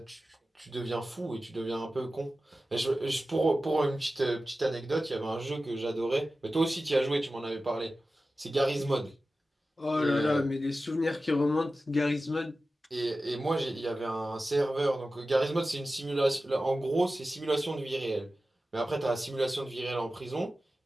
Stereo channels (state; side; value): normal; both; correlation 0.94